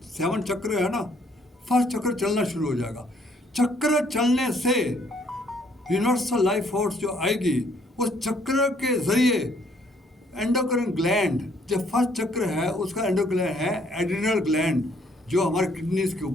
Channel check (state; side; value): normal; both; correlation 0.65